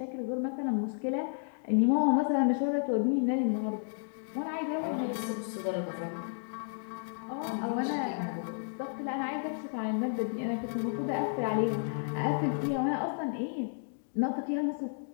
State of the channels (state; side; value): silent; right; digital silence